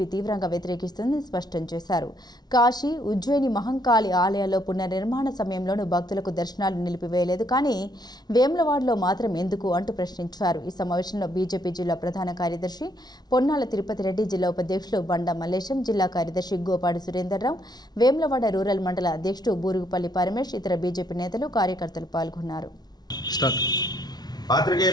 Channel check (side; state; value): right; late; 0.19 ms